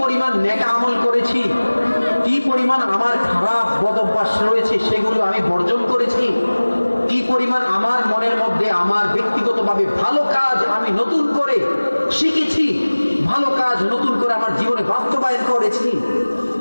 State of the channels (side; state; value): both; inverted; correlation -1.00